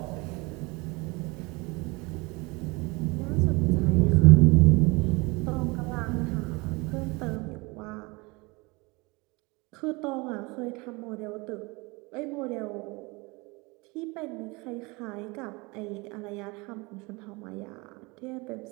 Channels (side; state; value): left; quieter; 25.8 dB